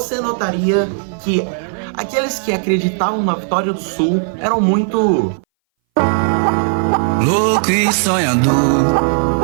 notaria que aqueles que acreditavam na vitória do Sul eram muito louco e sonhador,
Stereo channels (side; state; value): left; silent; 62 dB below the other